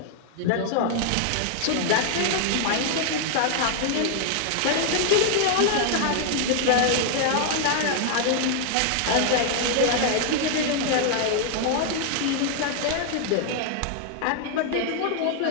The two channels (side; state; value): both; different; correlation 0.00